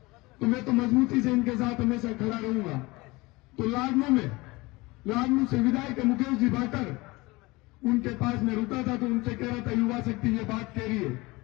तो मैं तो मजबूती से इनके साथ हमेशा खड़ा रहूंगा। तो लाडनू से विधायक मुकेश जी भाकर, उनके पास मैं रुका था, तो उनसे कह रहा था युवा शक्ति ये बात कह रही है।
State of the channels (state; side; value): quieter; right; 22.7 dB